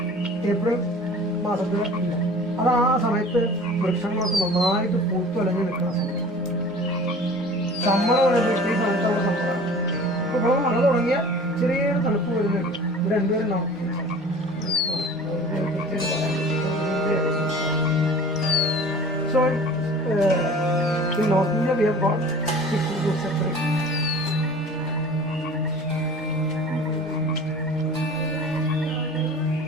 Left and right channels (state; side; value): normal; both; correlation 0.43